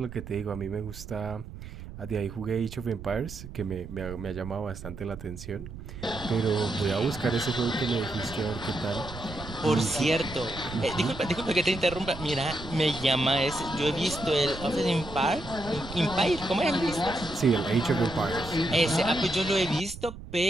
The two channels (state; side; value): noise; right; rumble, 12 dB below the sound